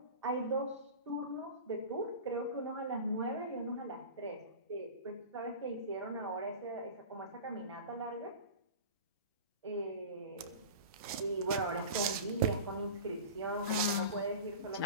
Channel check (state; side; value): inverted; both; correlation -0.34